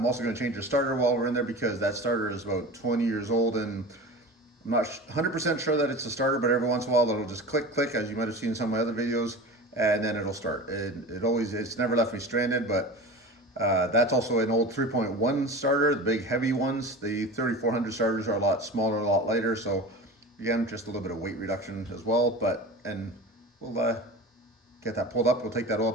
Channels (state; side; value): normal; both; correlation 0.33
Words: also gonna change the starter while we're in there because that starter is about 20 years old and I'm not 100% sure that it's a starter, but every once in a while it'll just click, click, as you might have seen in some of my other videos, and then it'll start. It's never left me stranded, but that's also an old 3.1 starter, the big heavy ones. The 3400 starters are a lot smaller, a lot lighter, so again, just a little bit of weight reduction as well. And we'll get that pulled up, we'll take that oil